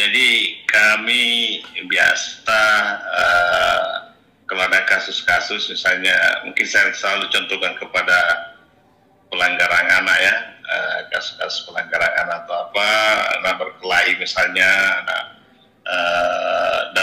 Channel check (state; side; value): identical; both; correlation 1.00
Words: kami biasa kalau ada kasus-kasus, misalnya mungkin saya selalu contohkan kepada pelanggaran anak ya, kasus-kasus pelanggaran anak atau apa, anak berkelahi misalnya, anak